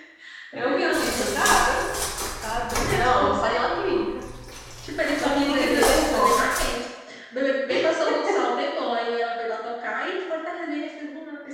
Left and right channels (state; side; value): identical; both; correlation 1.00